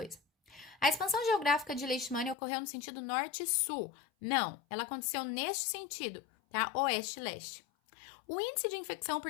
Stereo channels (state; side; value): drops out; right; at 2.4 s